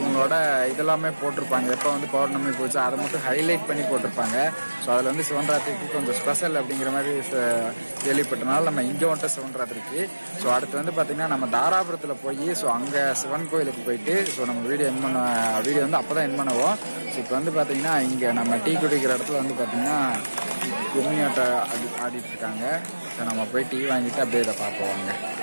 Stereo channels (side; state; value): both; inverted; correlation -1.00